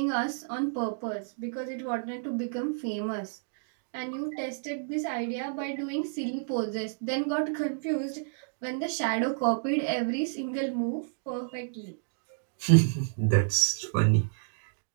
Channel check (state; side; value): silent; left; digital silence